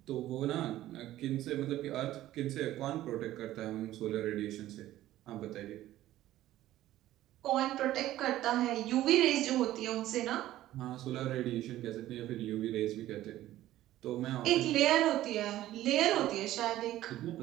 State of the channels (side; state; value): left; quieter; 14.4 dB